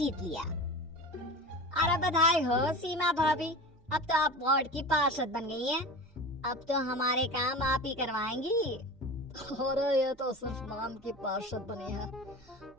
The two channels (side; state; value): right; noise; hum, 29 dB below the sound